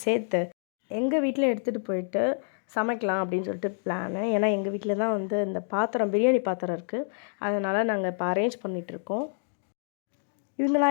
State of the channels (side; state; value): right; silent; digital silence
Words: சேர்த்து எங்கள் வீட்டில் எடுத்துகிட்டு போயிட்டு சமைக்கலாம் அப்படின்னு சொல்லிட்டு பிளானு. ஏன்னா எங்கள் வீட்டில் தான் வந்து இந்த பாத்திரம், பிரியாணி பாத்திரம் இருக்குது. அதனால் நாங்கள் இப்போ அரேஞ்ச் பண்ணிகிட்ருக்கோம்.